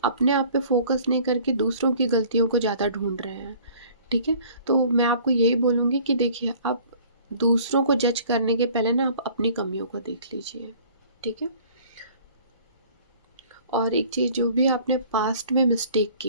अपने आप पे फोकस नहीं करके दूसरों की गलतियों को ज़्यादा ढूंढ रहे हैं, ठीक है। तो मैं आपको यही बोलूँगी कि देखिए, आप दूसरों को जज करने के पहले ना आप अपनी कमियों को देख लीजिए, ठीक है। और एक चीज़, जो भी आपने पास्ट में मिस्टेक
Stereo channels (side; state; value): both; inverted; correlation -0.51